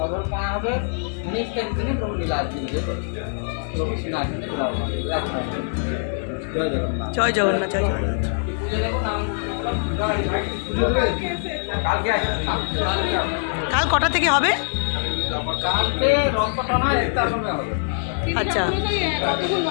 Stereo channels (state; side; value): silent; right; digital silence